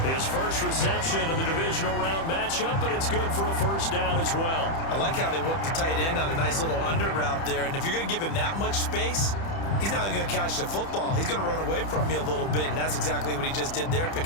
His first reception of the divisional round matchup, but it's good for a first down as well. I like how they work the tight end on a nice little under route there. And if you're going to give him that much space, he's not going to catch the football. He's going to run away from you a little bit, and that's exactly what he just did there,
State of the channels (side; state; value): right; late; 30 ms